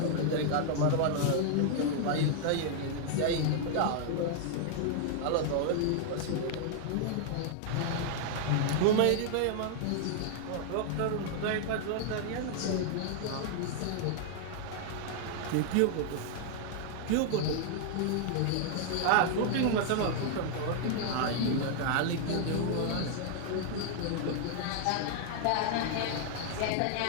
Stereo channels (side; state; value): both; different; correlation 0.00